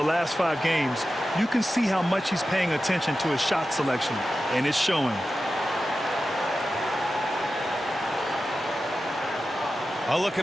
last 5 games, you can see how much he's paying attention to his shot selection, and it's showing. I'll look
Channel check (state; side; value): normal; both; correlation 0.93